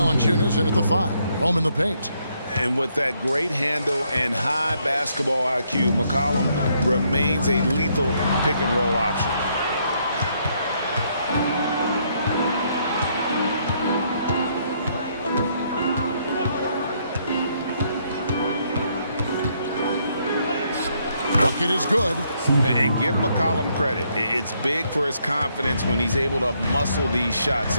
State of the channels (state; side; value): inverted; both; correlation -0.72